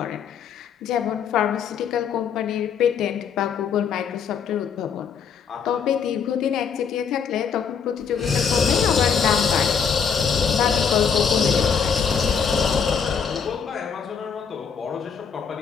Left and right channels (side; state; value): right; quieter; 6.7 dB